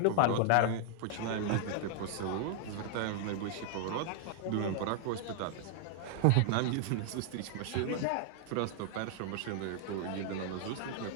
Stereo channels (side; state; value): both; different; correlation 0.00